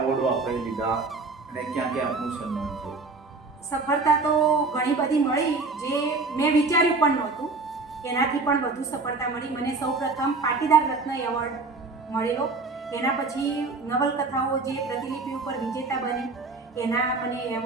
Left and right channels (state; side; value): quieter; left; 3.8 dB